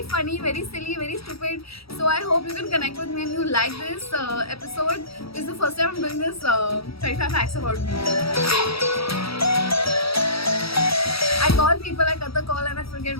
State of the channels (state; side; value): late; right; 0.76 ms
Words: funny, very silly, very stupid. So I hope you can connect with me and you like this episode. This is the first time I'm doing this 25 facts about me. I call people, I cut the call and I forget